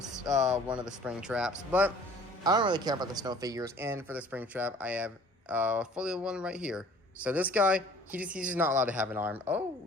one of the Springtraps. But I don't really care about the snow figures. And for the Springtrap, I have fully one right here. So this guy, he's just not allowed to have an arm. Oh,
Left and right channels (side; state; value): both; normal; correlation 0.51